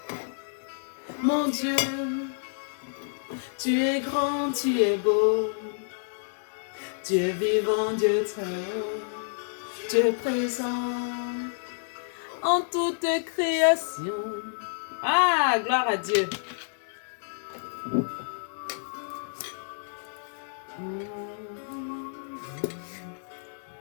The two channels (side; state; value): right; silent; digital silence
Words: Mon Dieu, tu es grand, tu es beau. Dieu vivant, Dieu très haut, Dieu présent en toute création. Ah, gloire à Dieu.